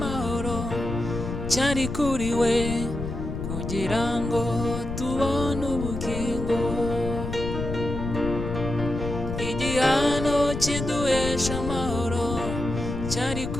cyari kuri we, kugira ngo tubone ubugingo. Igihano kiduhesha amahoro cyari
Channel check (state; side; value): noise; left; rumble, 5 dB below the sound